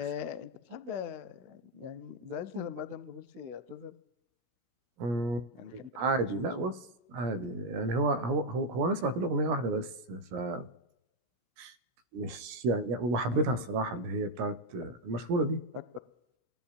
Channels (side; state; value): left; late; 16 ms